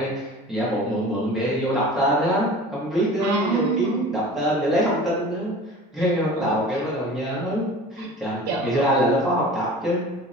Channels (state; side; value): normal; both; correlation 0.40